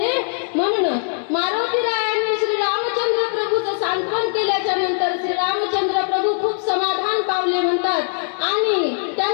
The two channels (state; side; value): silent; right; digital silence